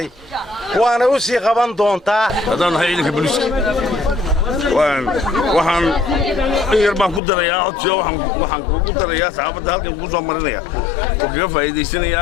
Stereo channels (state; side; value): drops out; right; at 7.2 s